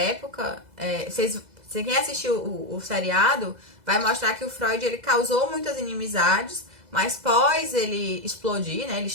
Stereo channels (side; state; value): left; late; 2.0 ms